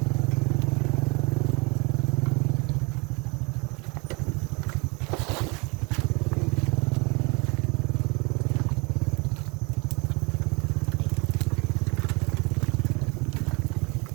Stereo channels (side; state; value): left; quieter; 29.6 dB